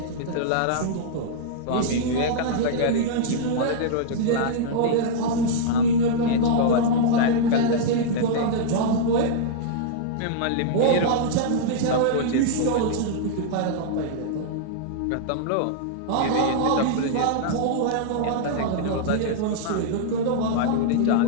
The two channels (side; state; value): both; different; correlation -0.02